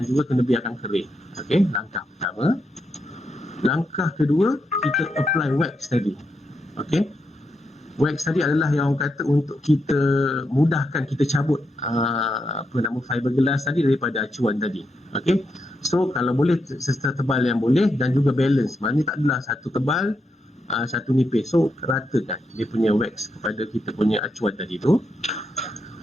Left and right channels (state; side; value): normal; both; correlation 0.83